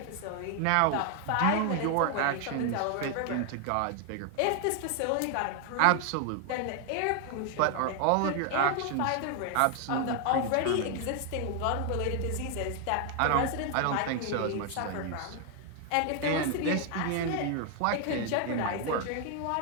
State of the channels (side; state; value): both; different; correlation 0.00